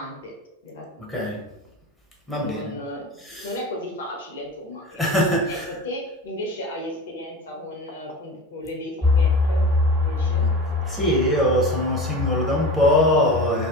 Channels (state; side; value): normal; both; correlation 0.31